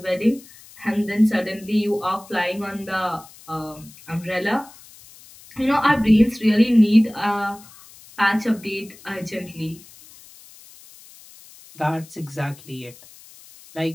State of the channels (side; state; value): left; noise; hiss, 22 dB below the sound